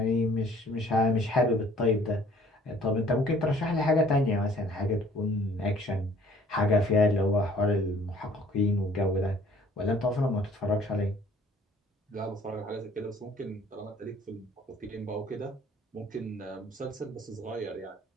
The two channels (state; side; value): normal; both; correlation 0.56